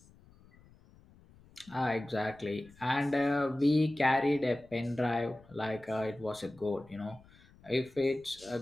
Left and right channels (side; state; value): left; noise; rumble, 26 dB below the sound